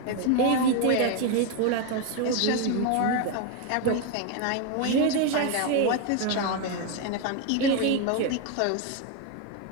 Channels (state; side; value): different; both; correlation 0.02